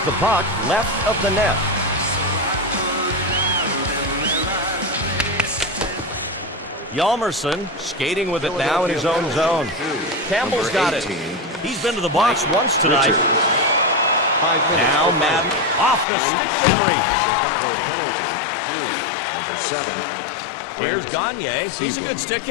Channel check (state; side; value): drops out; right; at 16.1 s